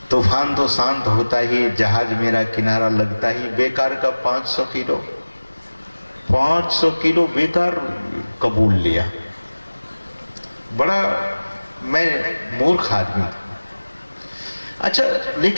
तूफान तो शांत होता ही, जहाज मेरा किनारा लगता ही, बेकार का 500 किलो, 500 किलो बेकार कबूल लिया। बड़ा मैं मूर्ख आदमी था। अच्छा,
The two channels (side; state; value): both; inverted; correlation -1.00